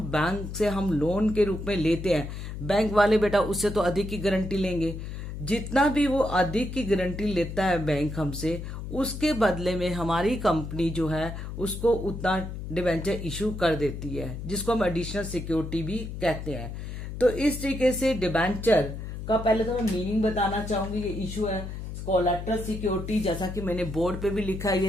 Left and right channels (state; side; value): noise; left; hum, 8 dB below the sound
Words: बैंक से हम लोन के रूप में लेते हैं, बैंक वाले बेटा उससे तो अधिक की गारंटी लेंगे। जितना भी वो अधिक की गारंटी लेता है बैंक हमसे, उसके बदले में हमारी कंपनी जो है उसको उतना डिवेंचर इशू कर देती है, जिसको हम एडिशनल सिक्योरिटी भी कहते हैं। तो इस तरीके से डिवेंचर का पहले तो मैं मीनिंग बताना चाहूंगी। ये इशू है कोलैटरल सिक्योरिटी, जैसा कि मैंने बोर्ड पे भी लिखा है,